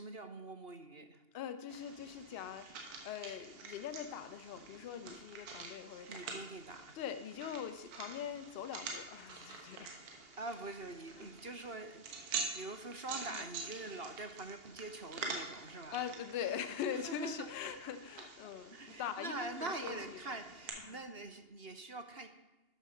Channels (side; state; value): left; late; 2.8 ms